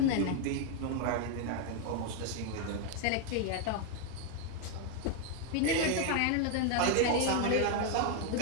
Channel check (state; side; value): different; both; correlation 0.00